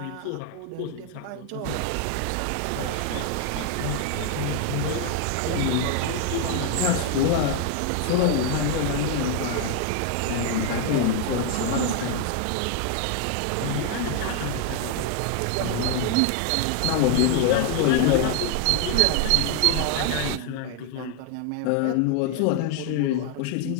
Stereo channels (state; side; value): different; both; correlation 0.00